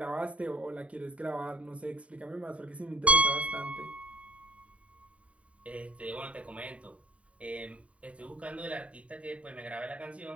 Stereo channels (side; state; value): left; late; 0.065 ms